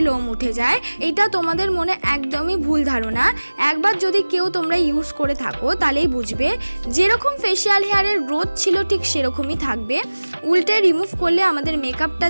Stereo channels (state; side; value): inverted; both; correlation -1.00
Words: লোম উঠে যায়, এটা তোমাদের মনে একদমই ভুল ধারণা। একবার যদি কেউ তোমরা ইউজ করে থাকো তাহলেই বুঝবে যেরকম ফেশিয়াল হেয়ারের গ্রোথ ছিল ঠিক সেরকমই থাকবে। উল্টে রিমুভ করলে আমাদের মেকআপটা